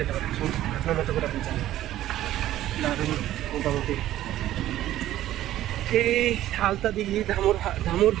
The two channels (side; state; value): left; quieter; 13.5 dB